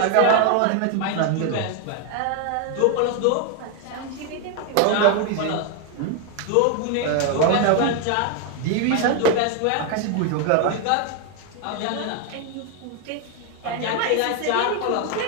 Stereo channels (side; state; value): both; different; correlation 0.01